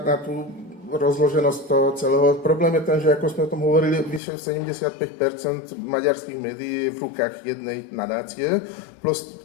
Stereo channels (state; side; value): drops out; right; at 4.2 s